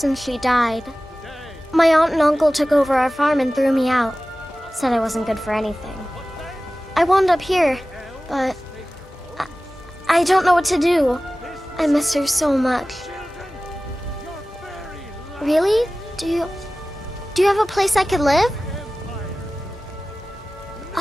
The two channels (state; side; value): normal; both; correlation 0.96